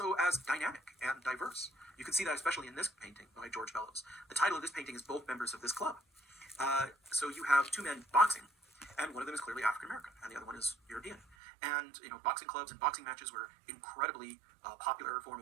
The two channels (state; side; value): drops out; left; at 11.4 s